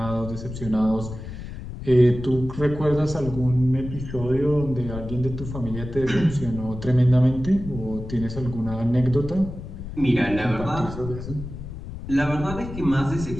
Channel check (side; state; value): left; noise; rumble, 10 dB below the sound